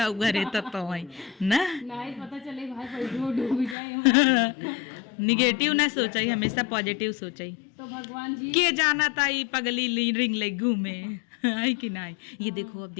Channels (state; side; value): drops out; right; at 3.8 s